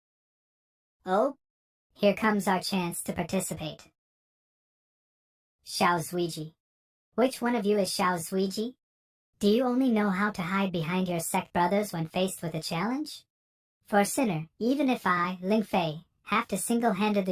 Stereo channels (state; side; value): identical; both; correlation 1.00